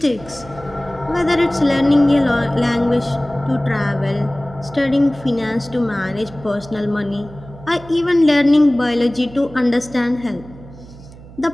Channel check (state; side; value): noise; right; hum, 19 dB below the sound